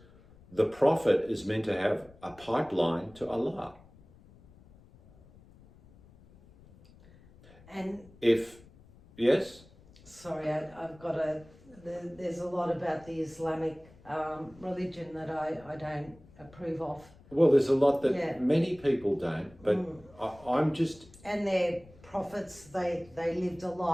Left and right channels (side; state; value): left; noise; rumble, 24 dB below the sound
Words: the Prophet is meant to have a pipeline to Allah. And yes? Sorry, there's a lot about the Islamic religion that I don't approve of. Well, there's a lot that many people don't, but I'm just... And their prophets, they lived a